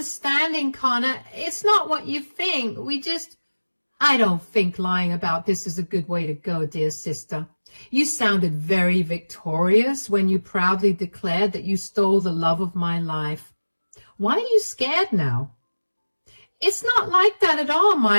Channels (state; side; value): inverted; both; correlation -1.00